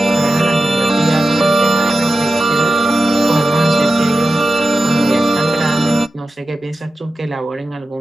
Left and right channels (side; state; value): both; normal; correlation 0.92